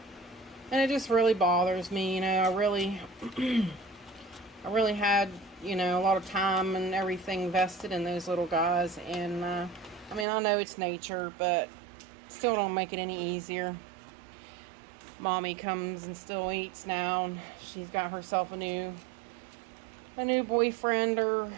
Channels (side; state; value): left; drops out; at 10.2 s